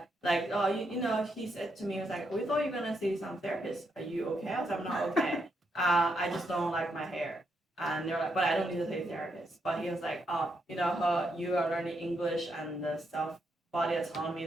you know, he said to me, he was like, we thought you were gonna see some therapist. Are you okay? I was like, I'm not okay. I just don't like my hair. And they're like, but I don't need to see a therapist. But he was like, oh, you know, you are learning English and the self-body autonomy,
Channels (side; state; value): both; normal; correlation 0.79